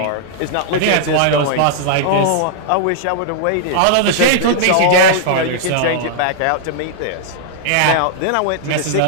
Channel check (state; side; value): different; both; correlation -0.01